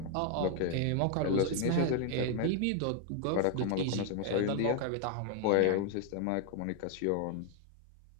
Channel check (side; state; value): both; different; correlation 0.00